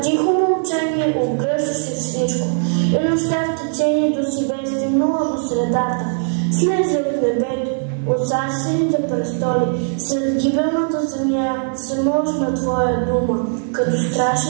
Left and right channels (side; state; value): left; silent; 62 dB below the other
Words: Слезе от небето, от царствените престоли, сред гибелната земя се можна твоя дума, като